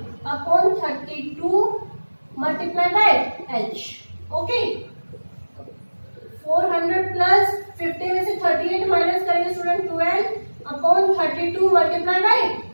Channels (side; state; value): both; inverted; correlation -1.00